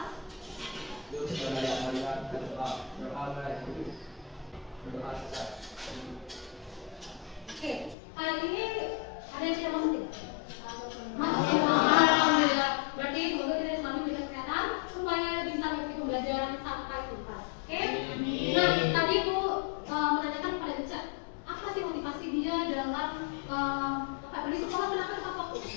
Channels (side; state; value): right; drops out; at 8.0 s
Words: Oke, kali ini ada yang tidak masuk tidak? Masuk. Alhamdulillah. Berarti semoga kita selalu diberikan kesehatan supaya bisa mengikuti pembelajaran sampai tuntas. Oke? Nah, tadi Bu menanyakan kepada Ica, apa sih motivasi dia dalam di sekolah kenapa tepat waktu?